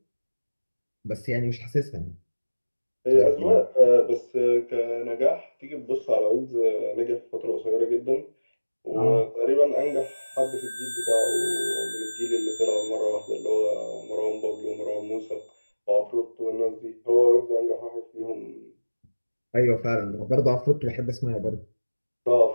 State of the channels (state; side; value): inverted; both; correlation -1.00